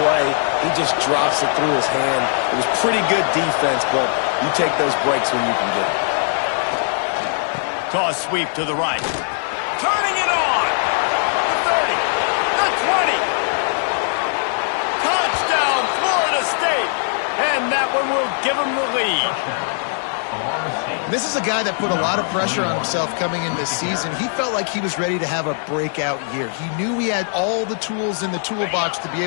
play. He just drops it through his hand. It was pretty good defense, but you take those breaks when you can get it. Toss sweep to the right. Turning it on. The 30. The 20. Touchdown, Florida State. And that one will give them the lead. This is a guy that put a lot of pressure on himself coming in this season. He felt like he was ready to have a breakout year. He knew he had all the tools in the toolbox to be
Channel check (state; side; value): silent; right; digital silence